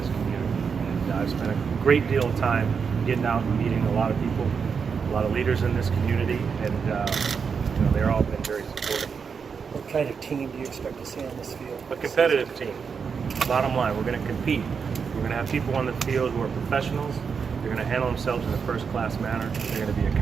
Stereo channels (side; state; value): left; quieter; 6.0 dB